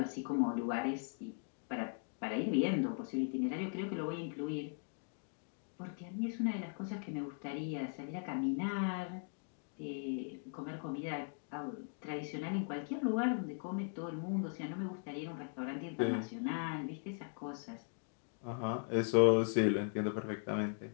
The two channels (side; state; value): right; silent; 52 dB below the other